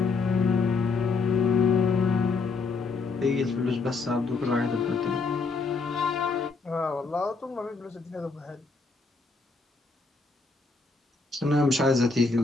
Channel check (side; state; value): right; quieter; 4.2 dB